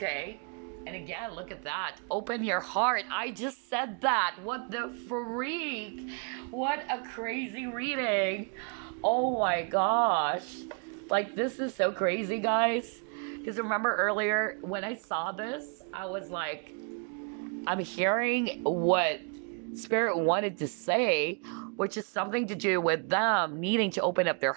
And again, look at that. Open your heart. I just said that. What the freak? What a crazy reading. Oh my gosh. Like, this is so crazy, guys. Because remember earlier when I saw this, I was like, I'm hearing what Spirit wanted to say, which is something to do with them needing to open up their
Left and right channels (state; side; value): quieter; left; 39.2 dB